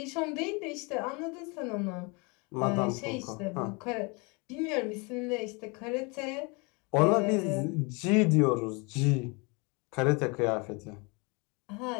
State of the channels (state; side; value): quieter; right; 30.1 dB